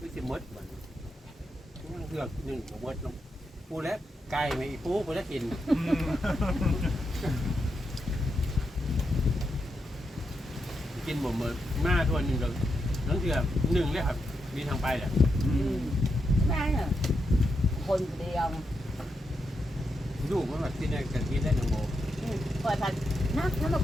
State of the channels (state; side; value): normal; both; correlation 0.84